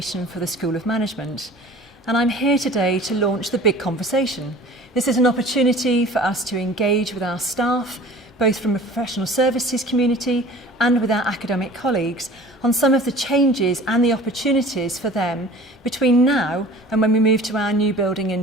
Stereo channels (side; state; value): both; normal; correlation 0.44